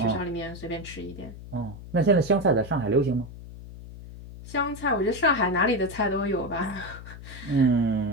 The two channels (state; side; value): noise; left; hum, 14 dB below the sound